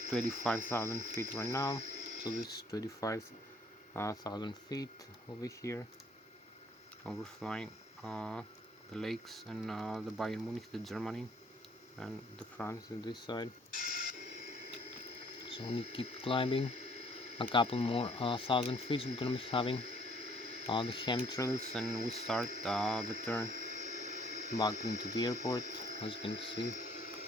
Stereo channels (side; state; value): both; normal; correlation 0.61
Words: 25,000 feet right now, so this is 25,000 feet over here. And we're flying the lakes and the Bayern Munich, the Germany, and the France on this side. So we keep climbing a couple more thousand feet. We're gonna be having the chemtrails, and we start the turn back into the airport. As you can see,